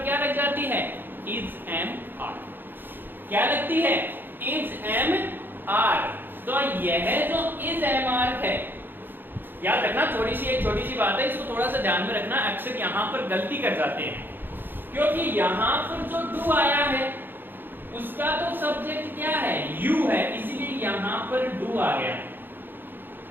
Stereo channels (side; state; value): left; late; 0.096 ms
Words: क्या लग जाती है, इज एम आर, क्या लगती है, इज एम आर। तो यह जो इज एम आर है, याद रखना, एक छोटी सी बात है, इसको थोड़ा सा ध्यान में रखना। अक्सर यहां पर गलती कर जाते हैं क्योंकि यहां पर जो डू आया है उसका तो सब्जेक्ट क्या है, यू है, इसीलिए यहां पर डू आ गया।